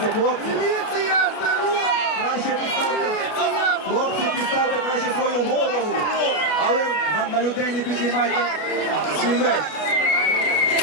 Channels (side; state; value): right; late; 33 ms